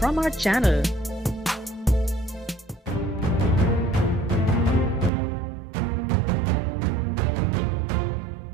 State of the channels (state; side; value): drops out; left; at 5.1 s